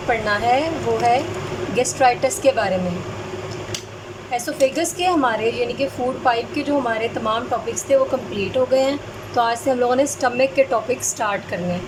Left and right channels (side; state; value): both; identical; correlation 1.00